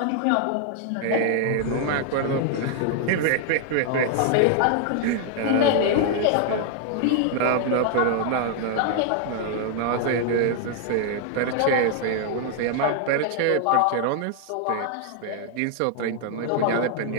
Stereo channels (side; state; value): both; different; correlation 0.00